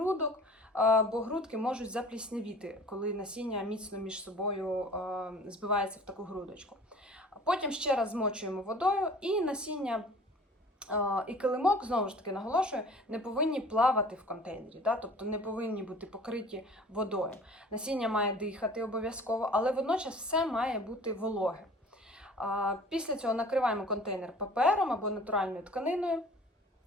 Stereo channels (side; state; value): both; normal; correlation 0.46